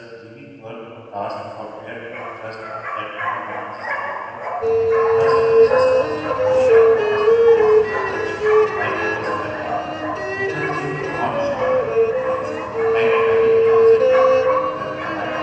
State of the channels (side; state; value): both; identical; correlation 1.00